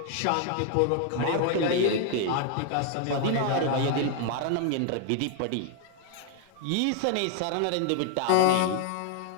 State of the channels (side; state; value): both; different; correlation 0.00